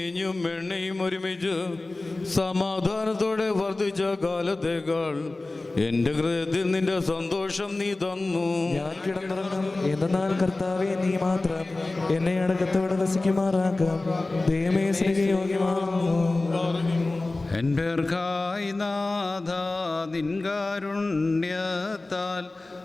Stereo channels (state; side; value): quieter; right; 3.1 dB